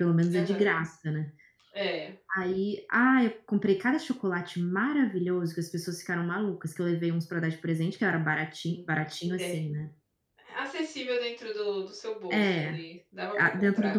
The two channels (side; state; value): both; identical; correlation 1.00